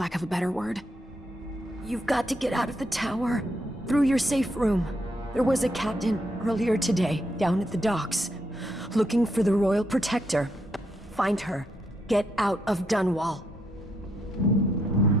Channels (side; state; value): both; normal; correlation 0.77